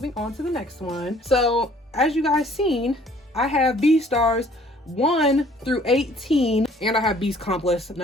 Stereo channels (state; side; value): normal; both; correlation 0.57